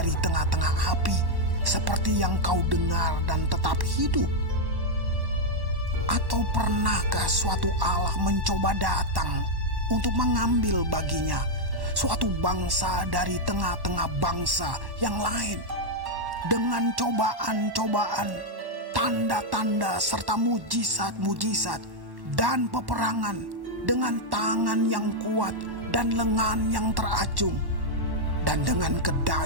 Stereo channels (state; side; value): late; left; 1.1 ms